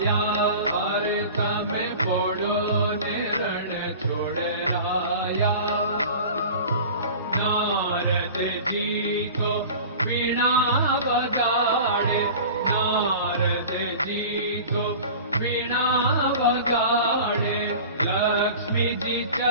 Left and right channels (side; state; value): both; inverted; correlation -0.38